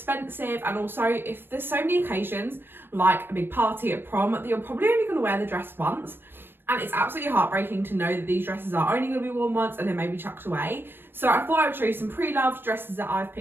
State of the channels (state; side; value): late; left; 0.098 ms